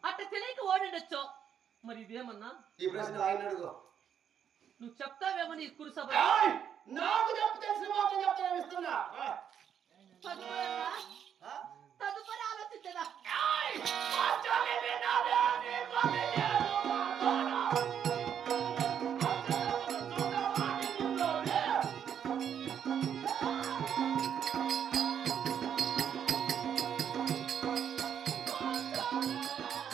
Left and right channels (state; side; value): quieter; left; 8.6 dB